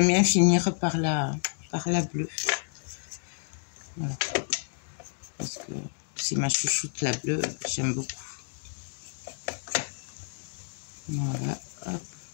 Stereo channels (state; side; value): silent; right; digital silence